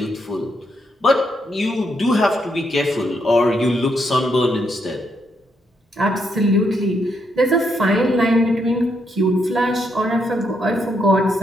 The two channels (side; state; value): both; normal; correlation 0.78